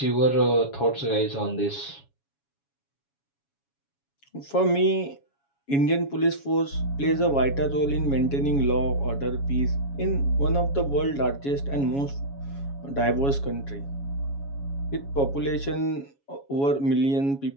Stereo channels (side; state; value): right; late; 7.2 ms